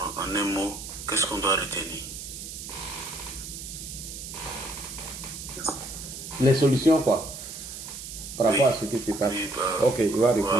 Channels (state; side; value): noise; right; hiss, 10 dB below the sound